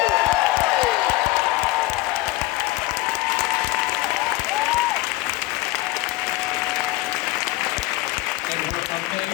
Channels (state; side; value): quieter; right; 19.5 dB